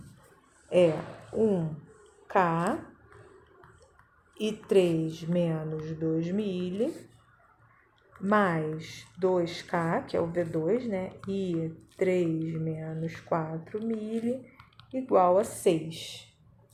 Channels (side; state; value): both; identical; correlation 1.00